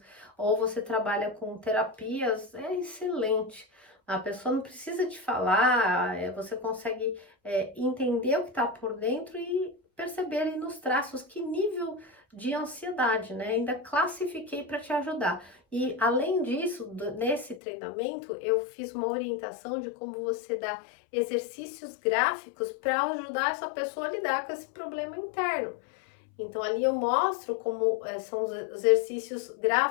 ou você trabalha com terapias, é excelente. A pessoa não precisa te falar, você consegue entender o que está por dentro e perceber ali nos traços que nível de ansiedade, né? Ainda classifiquei para te ajudar. E além disso, nesse treinamento, eu fiz uma orientação de como você dá exercícios gráficos para ajudar essa pessoa a lidar com esse problema interno. Então ali eu mostro como são os exercícios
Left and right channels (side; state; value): right; drops out; at 17.6 s